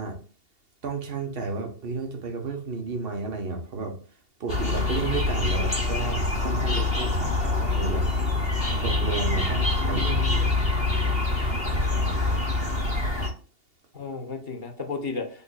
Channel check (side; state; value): left; late; 2.8 ms